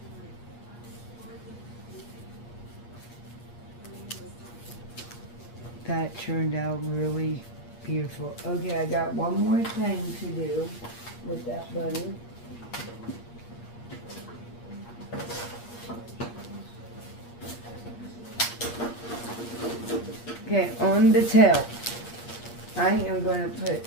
That turned out really beautiful. Okay, I got one more thing to do with that bunny. Okay, on the tail, I am going to put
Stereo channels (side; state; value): right; late; 8.5 ms